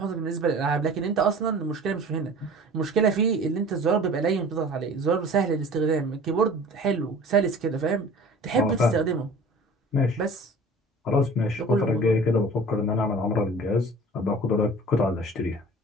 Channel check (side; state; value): both; normal; correlation 0.43